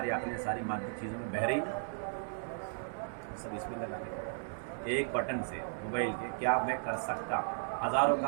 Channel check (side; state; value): left; silent; digital silence